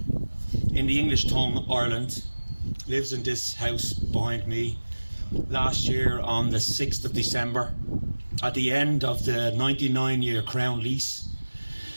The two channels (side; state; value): both; inverted; correlation -1.00